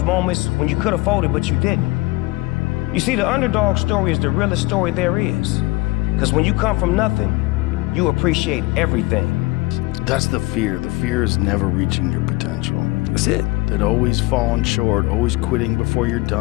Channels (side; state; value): right; quieter; 22.1 dB